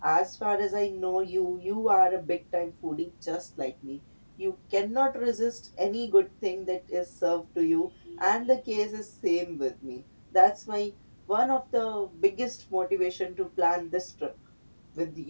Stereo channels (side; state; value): both; inverted; correlation -1.00